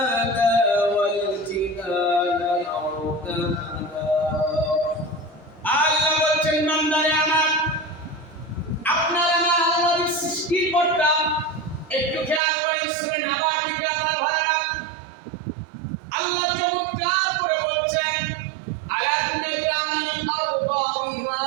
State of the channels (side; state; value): left; drops out; at 12.4 s